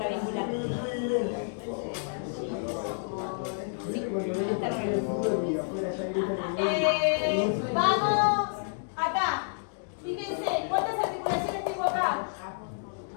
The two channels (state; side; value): silent; right; digital silence